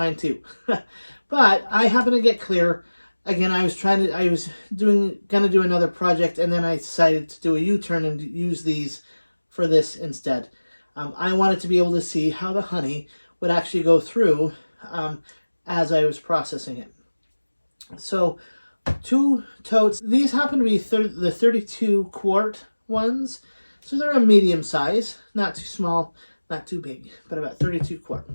too. But I happen to get clear. Again, I was gonna do another project, and then I decided to do a U-turn and use these for this instead. I wanted to be able to see how the honey would actually go through as I was processing it. So 2 totes. These happen to be the 32 quart ones. So they're a medium size, not too small, not too big, but about 32 quart.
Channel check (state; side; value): inverted; both; correlation -1.00